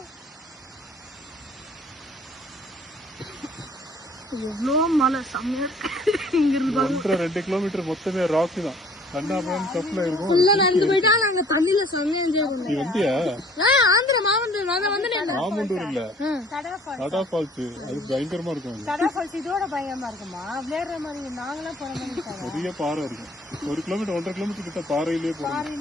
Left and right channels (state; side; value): normal; both; correlation 0.55